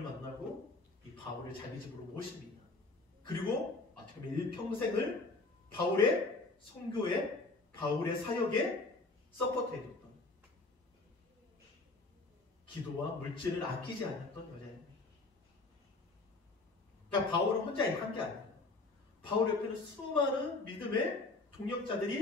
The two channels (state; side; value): quieter; right; 3.4 dB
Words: 만나고 이 바울을 자기 집으로 모십니다. 그리고 어떻게 보면 일평생을 바울의 선교에, 바울의 사역에 서포트해줬던, 기도와 물질을 아끼지 않았던 여자입니다. 그러니까 바울은 혼자 한 게 아니에요. 바울 옆에는 수많은 믿음의